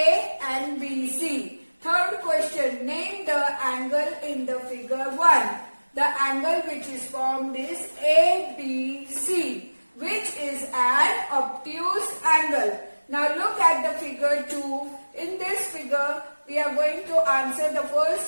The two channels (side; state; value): both; inverted; correlation -1.00